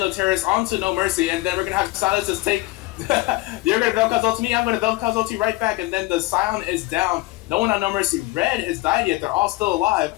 onto No Mercy, and then we're gonna have Silas just take. You're gonna Vel'Koz ult me, I'm gonna Vel'Koz ult right back, and then the Sion is down. No one on No Mercy Red has died yet. They're all still alive.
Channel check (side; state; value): right; quieter; 20.4 dB